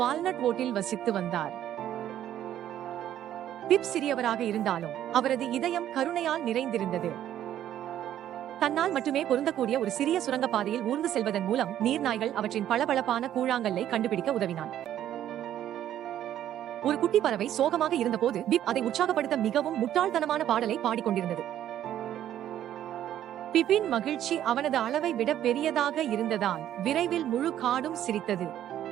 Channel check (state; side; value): quieter; left; 11.5 dB